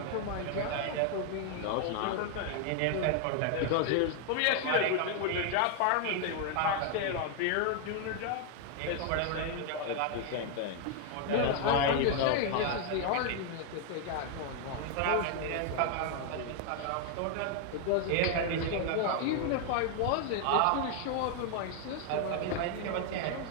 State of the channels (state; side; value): different; both; correlation 0.00